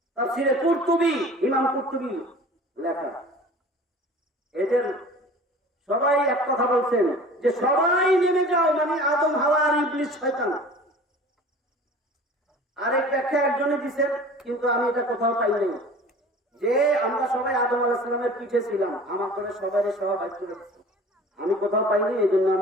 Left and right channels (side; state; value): both; normal; correlation 0.43